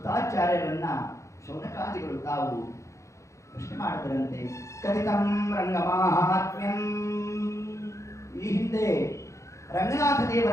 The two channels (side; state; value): right; late; 0.15 ms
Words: ಶೌನಕಾದಿಗಳು ತಾವು ಪ್ರಶ್ನೆ ಮಾಡಿದರಂತೆ. ಕಥಿತಂ ರಂಗಮಾಹಾತ್ಮ್ಯಂ, ಈ ಹಿಂದೆ ರಂಗನಾಥ